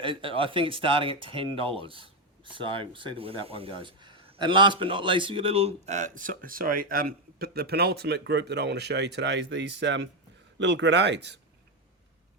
think it's starting at $10. So we'll see where that one goes. And last but not least, we've got a little, but the penultimate group that I want to show you today is these little grenades.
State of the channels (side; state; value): both; normal; correlation 0.06